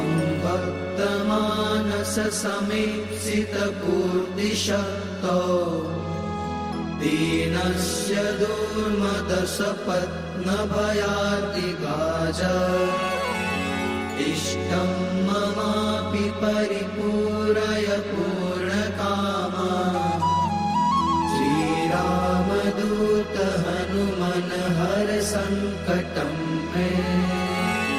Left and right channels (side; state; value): both; identical; correlation 1.00